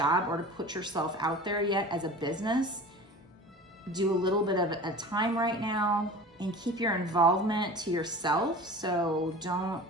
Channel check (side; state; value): both; normal; correlation 0.38